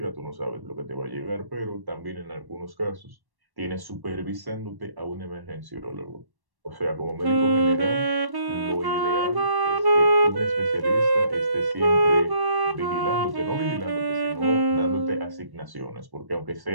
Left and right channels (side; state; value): left; late; 1.1 ms